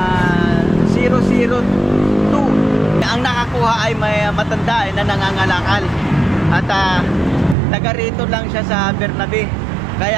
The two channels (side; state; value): left; drops out; at 7.6 s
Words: 002. Ang nakakuha ay may matanda na nangangalakal at taga rito lang siya sa Bernabe,